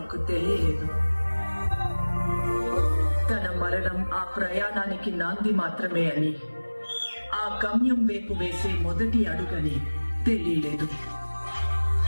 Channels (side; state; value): both; inverted; correlation -1.00